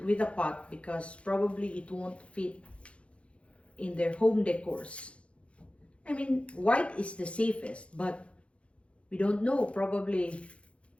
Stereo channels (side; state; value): right; late; 0.061 ms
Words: with a pot because probably it won't fit in their home decors. I mean, white is the safest, but we don't know. Probably